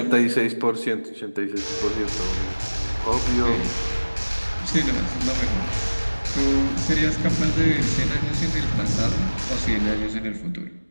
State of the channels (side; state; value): both; inverted; correlation -1.00